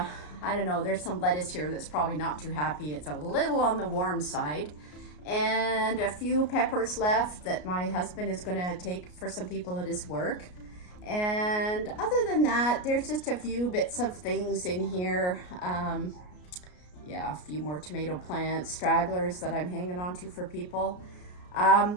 don't know, there's some lettuce here that's probably not too happy. It's a little on the warm side. And a few peppers left that my husband is going to take for some people at his work. And other than that, there's just a few bits of things in here. Yeah, a few more tomato plants, stragglers that I'm hanging on to for people. I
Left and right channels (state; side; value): late; right; 33 ms